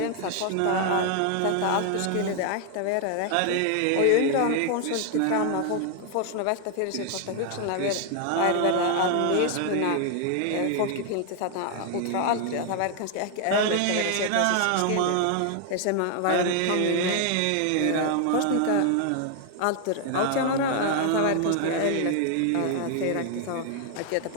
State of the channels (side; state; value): both; different; correlation 0.00